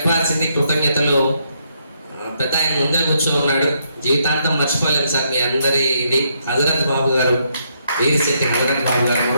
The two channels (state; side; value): inverted; both; correlation -0.75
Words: కృతజ్ఞతలు. పెద్ద ఆయన ముందే కూర్చో ఉన్నాడు, జీవితాంతం మర్చిపోలేము సార్ మీ అందరి ఇది. హజరత్ బాబు గారు, వీరిశెట్టి హజరత్ బాబు గారు,